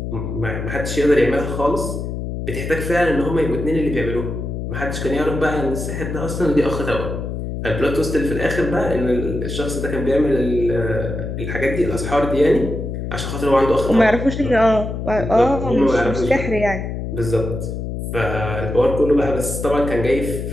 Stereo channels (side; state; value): left; noise; hum, 5 dB below the sound